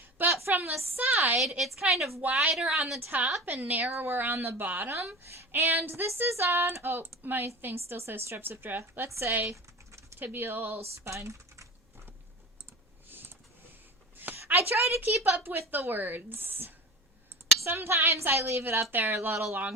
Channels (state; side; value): normal; both; correlation 0.33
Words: But from the side, it's kind of wider on the top and narrower on the bottom. And this is on, oh, my thing still says Strepsiptera. Let's say tibial spine. I try to keep up with the words. Sometimes I leave it up there a little